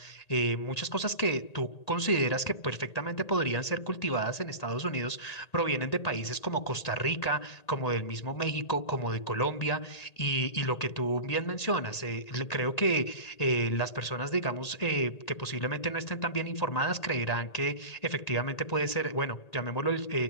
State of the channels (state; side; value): late; right; 1.8 ms